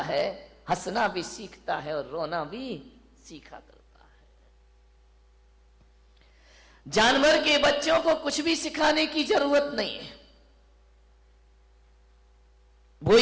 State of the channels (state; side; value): identical; both; correlation 1.00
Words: है, हंसना भी सीखता है और रोना भी सीखा करता है। जानवर के बच्चों को कुछ भी सिखाने की जरूरत नहीं है। वो